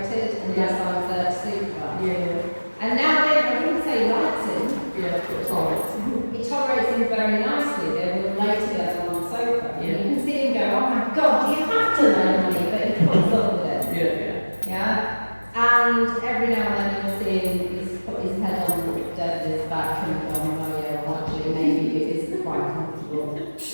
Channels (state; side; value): inverted; both; correlation -1.00